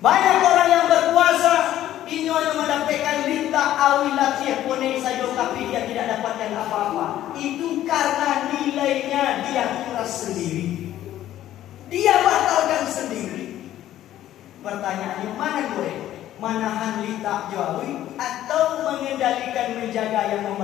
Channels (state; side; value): quieter; right; 12.8 dB